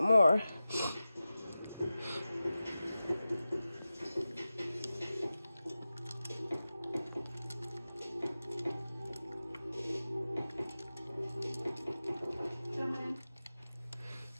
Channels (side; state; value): both; inverted; correlation -0.95